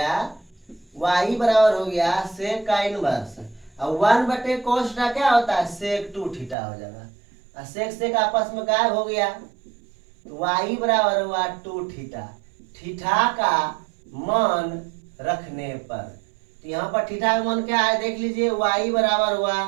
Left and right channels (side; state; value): left; drops out; at 6.6 s